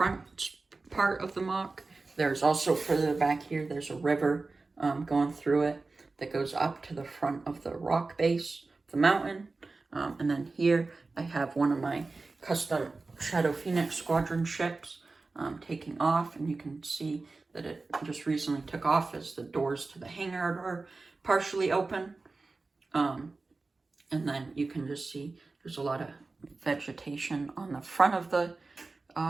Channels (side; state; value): left; quieter; 3.7 dB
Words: part of the mock. There's also further back here, there's a river going through it that goes up to the front of the rock base of the mountain. And then here I have one of my custom Shadow Phoenix Squadron ships taking off, and you can see that it just recently took off as the doors to the hangar are partially open. And then you can just see there's a lot of vegetation on the front of the